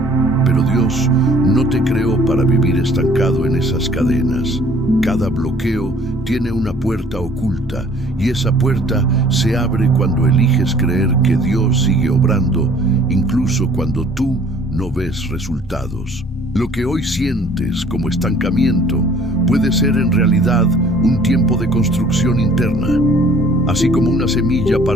Pero Dios no te creó para vivir estancado en esas cadenas. Cada bloqueo tiene una puerta oculta y esa puerta se abre cuando eliges creer que Dios sigue obrando, incluso cuando tú no ves resultados. Lo que hoy sientes como estancamiento puede ser en realidad un tiempo de construcción interna. Así como una semilla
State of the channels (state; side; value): normal; both; correlation 0.55